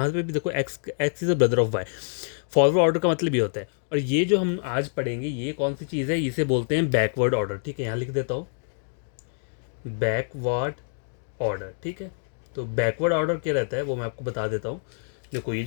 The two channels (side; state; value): right; silent; digital silence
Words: पे भी देखो x is a brother of Y. Forward order का मतलब ये होता है। और ये जो हम आज पढ़ेंगे ये कौन सी चीज़ है, इसे बोलते हैं बैकवर्ड ऑर्डर। ठीक है, यहाँ लिख देता हूँ बैकवर्ड ऑर्डर। ठीक है, तो बैकवर्ड ऑर्डर क्या रहता है वो मैं आपको बता देता हूँ। देखो ये